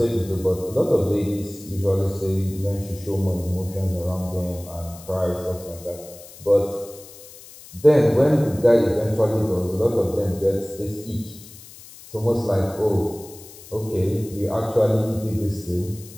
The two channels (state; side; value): noise; left; hiss, 19 dB below the sound